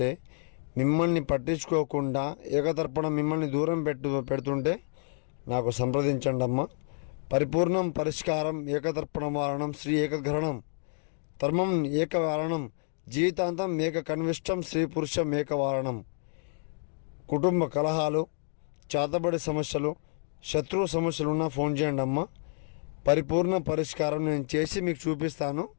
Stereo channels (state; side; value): silent; right; digital silence